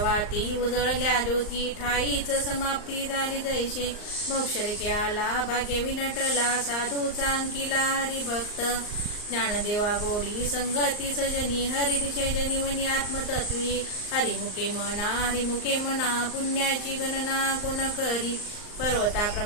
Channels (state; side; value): late; right; 39 ms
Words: उजळल्या ज्योती ठाईच समाप्ती झाली जैसे मोक्षरेखे आला भाग्य विनटला साधूचा अंकिला हरिभक्त ज्ञानदेवा गोडी संगती सजनी हरिदिशे जनिवनी आत्मतत्वी हरिमुखे म्हणा पुण्याची गणना कोण करी